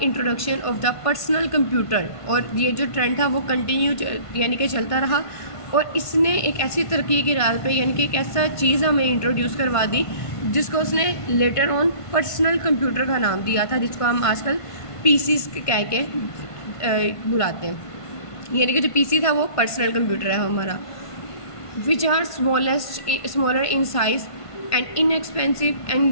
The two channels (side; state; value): right; late; 1.5 ms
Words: introduction of the personal computer. اور یہ جو ٹرینڈ تھا وہ کنٹینیو یعنی کہ چلتا رہا، اور اس نے ایک ایسی ترقی کی راہ پہ، یعنی کہ ایک ایسا چیز ہمیں انٹروڈیوس کروا دی جس کو اس نے لیٹر آن پرسنل کمپیوٹر کا نام دیا تھا، جس کو ہم آج کل PCs کہہ کے بلاتے ہیں. یعنی کہ جو PC تھا وہ پرسنل کمپیوٹر ہے ہمارا. which are smaller in size and inexpensive